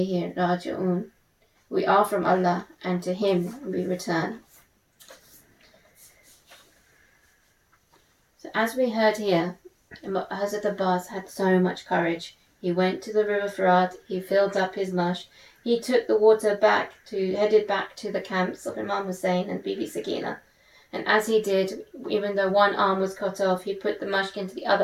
raji'un. We are from Allah and to Him we return. So as we heard here, Hazrat Abbas had so much courage. He went to the river Farad, he filled up his mush, he took the water headed back to the camps of Imam Hussein and Bibi Sakina. And as he did, even though one arm was cut off, he put the mushk into the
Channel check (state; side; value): identical; both; correlation 1.00